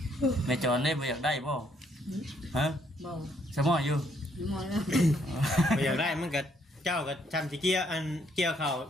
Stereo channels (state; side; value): normal; both; correlation 0.70